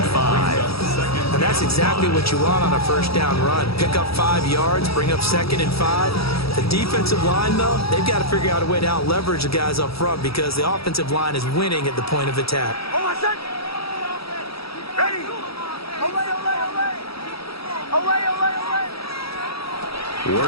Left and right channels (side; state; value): right; late; 0.76 ms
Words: 5. And that's exactly what you want on a first down run. Pick up 5 yards, bring up second and 5. The defensive line, though, they've got to figure out a way to out-leverage the guys up front because the offensive line is winning at the point of attack.